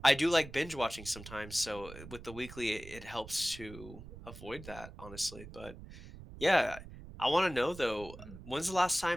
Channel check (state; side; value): noise; right; rumble, 14 dB below the sound